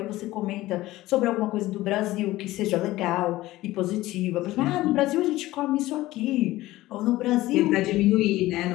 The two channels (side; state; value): right; quieter; 17.1 dB